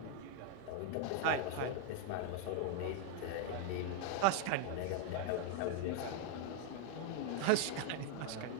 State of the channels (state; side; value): different; both; correlation 0.00